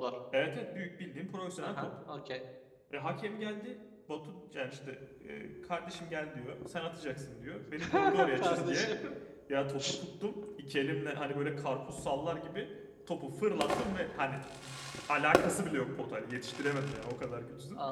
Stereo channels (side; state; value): both; identical; correlation 1.00